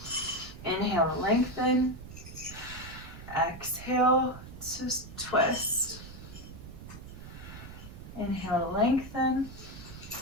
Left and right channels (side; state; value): right; noise; rumble, 14 dB below the sound